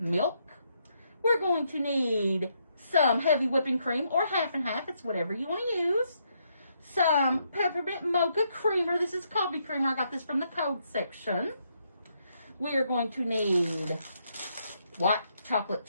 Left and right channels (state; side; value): inverted; both; correlation -0.76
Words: We're going to need some heavy whipping cream, or half and half. It's whatever you want to use. Some peppermint mocha creamer. This is coffee creamer. I got this from the code section. We are going to need white chocolate